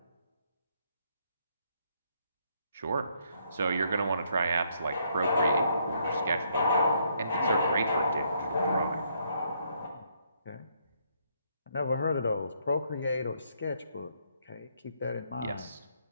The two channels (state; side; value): inverted; both; correlation -0.71